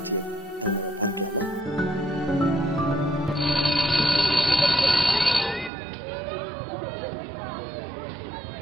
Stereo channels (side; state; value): left; drops out; at 5.7 s